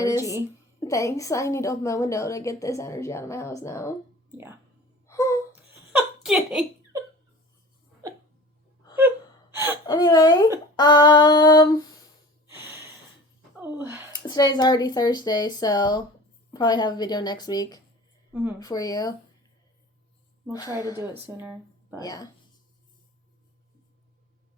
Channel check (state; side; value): normal; both; correlation 0.41